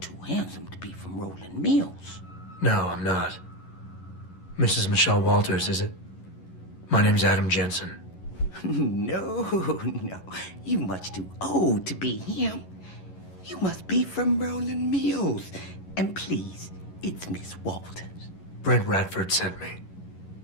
handsome to be from Rolling Mills. No, I'm not. Mrs. Michelle Walters, is it? My name's Adam Jensen. No, you much too old to be him. You must be from Rolling Mills. And please, it's Miss Walters. Brent Radford sent me.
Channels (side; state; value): right; late; 11 ms